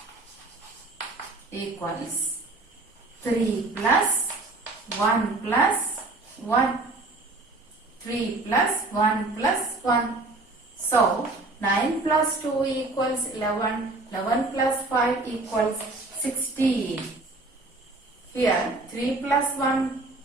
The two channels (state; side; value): quieter; left; 3.1 dB